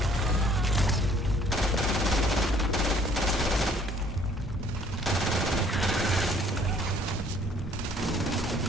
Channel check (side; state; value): both; normal; correlation 0.60